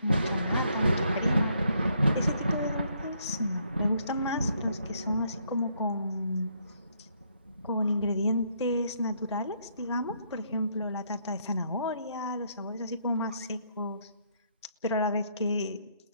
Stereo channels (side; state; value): both; inverted; correlation -0.71